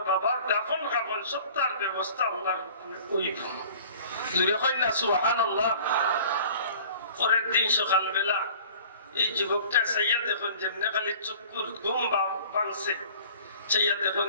বাবার দাফন কাফন সব তার ব্যবস্থা আল্লাহর হুকুমে হইব। জুরে কই না সুবহানাল্লাহ। পরের দিন সকালবেলা এই যুবকটা চাইয়া দেখুন যেমনি খালি চক্ষুর ঘুম ভাঙছে, চাইয়া দেখুন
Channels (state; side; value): inverted; both; correlation -0.47